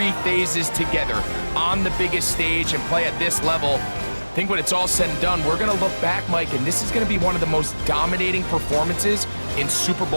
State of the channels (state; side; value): inverted; both; correlation -1.00